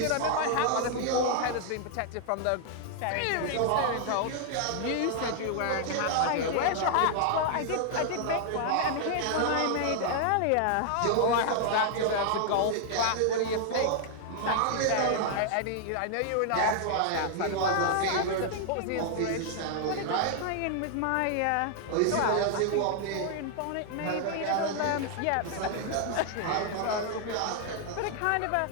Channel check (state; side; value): different; both; correlation 0.00